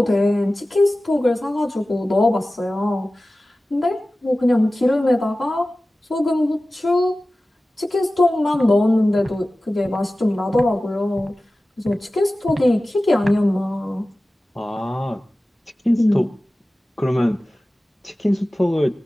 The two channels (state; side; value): normal; both; correlation 0.96